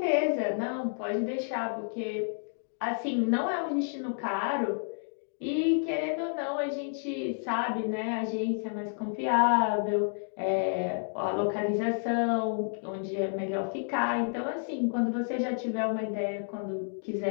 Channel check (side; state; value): right; silent; digital silence